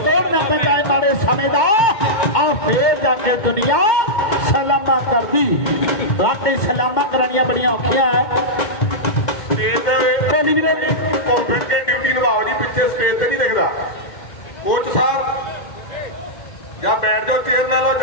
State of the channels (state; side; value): late; right; 2.1 ms